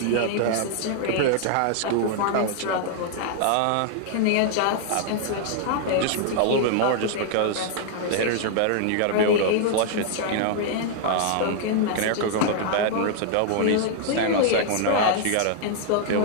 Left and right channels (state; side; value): different; both; correlation -0.01